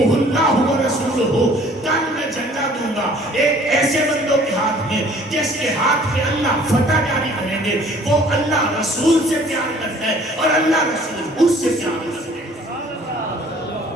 اللہ ورسولہ. کل میں جھنڈا دوں گا ایک ایسے بندوں کے ہاتھ میں جس کے ہاتھ پہ اللہ فتح جاری کریں گے، وہ اللہ رسول سے پیار کرتا ہے اور اللہ رسول اس سے پیار کرتا ہے.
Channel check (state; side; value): normal; both; correlation 0.54